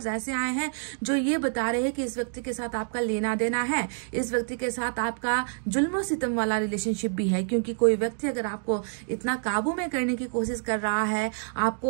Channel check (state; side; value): silent; left; digital silence